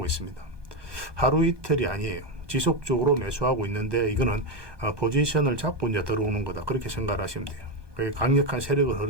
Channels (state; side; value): late; left; 1.2 ms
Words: 있습니다. 하루 이틀이 아니에요. 지속적으로 매수하고 있는데 이거는 포지션을 잡고 이제 들어오는 거다. 그렇게 생각을 하시면 돼요. 그게 강력한 세력의